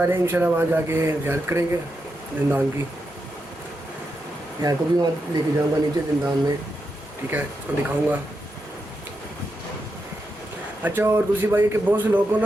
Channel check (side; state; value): both; normal; correlation 0.86